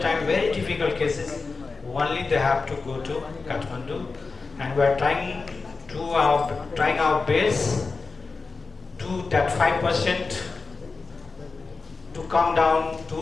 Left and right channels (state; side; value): quieter; right; 4.2 dB